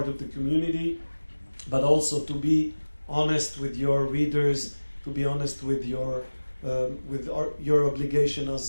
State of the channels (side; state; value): both; inverted; correlation -1.00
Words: of the community, but also to be honest with your readers, to be honest with your obligation